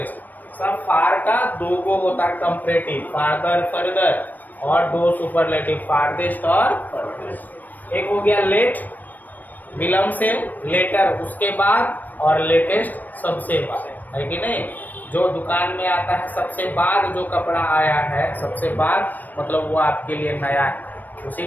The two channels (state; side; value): late; right; 0.086 ms